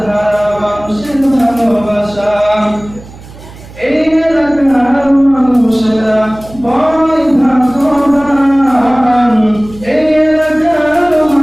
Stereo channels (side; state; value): right; noise; hum, 19 dB below the sound